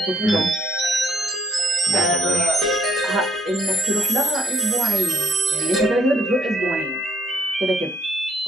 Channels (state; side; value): normal; both; correlation 0.68